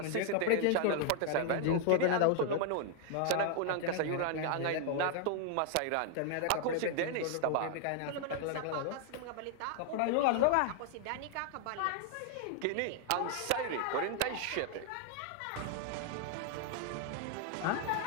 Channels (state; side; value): different; both; correlation 0.00